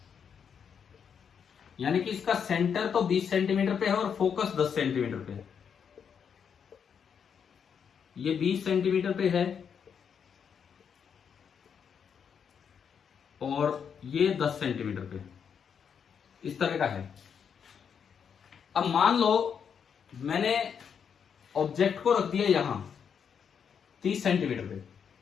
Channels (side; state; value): right; quieter; 7.2 dB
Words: यानी कि इसका सेंटर तो 20 सेंटीमीटर पे है और फोकस 10 सेंटीमीटर पे है। ये 20 सेंटीमीटर पे है और ये 10 सेंटीमीटर पे, इस तरह का है। अब मान लो मैंने ऑब्जेक्ट को रख दिया यहां 30 सेंटीमीटर पे।